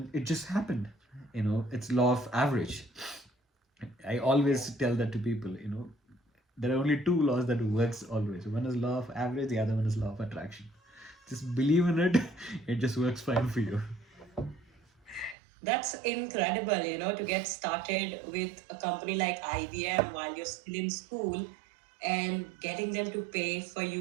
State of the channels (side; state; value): left; drops out; at 15.4 s